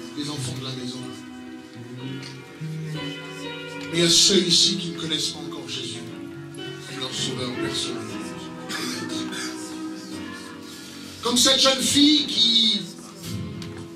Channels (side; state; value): both; identical; correlation 1.00